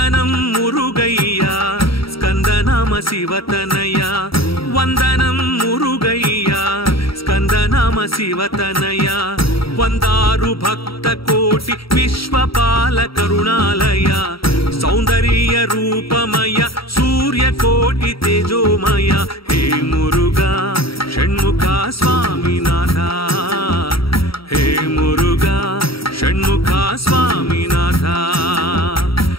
मुरुगय्या स्कंदनाम शिवतनया वंदनं मुरुगय्या स्कंदनाम शिवतनया वंदारु भक्त कोटि विश्वपाल करुणालय सौंदर्य रूपमय सूर्यकोटि तेजोमय हे मुरुगा षण्मुखा स्वामीनाथ हे मुरुगा षण्मुखा स्वामीनाथ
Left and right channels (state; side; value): late; right; 0.75 ms